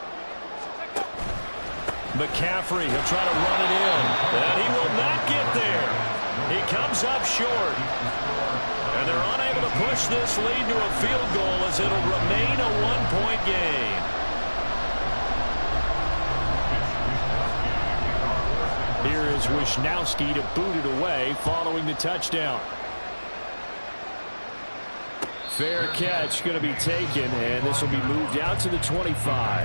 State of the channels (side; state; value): both; inverted; correlation -1.00